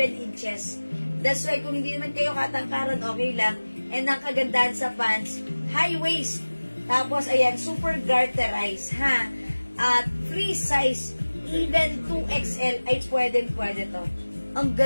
inches. That's why kung hindi naman kayo katangkaran, okay lang. And ang kagandahan sa pants, high waist. Tapos, ayan, super garterized, ha? At free size, even 2XL ay pwede to. Ang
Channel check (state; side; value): inverted; both; correlation -1.00